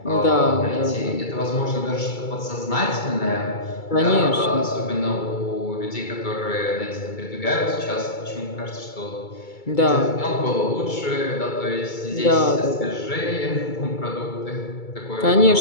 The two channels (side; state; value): right; late; 2.3 ms